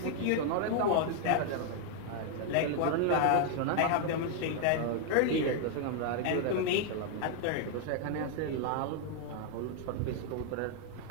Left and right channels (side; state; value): both; different; correlation 0.00